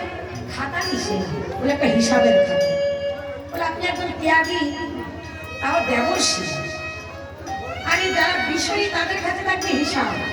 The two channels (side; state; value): both; identical; correlation 1.00